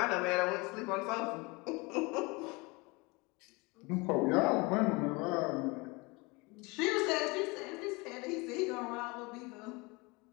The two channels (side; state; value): right; quieter; 26.2 dB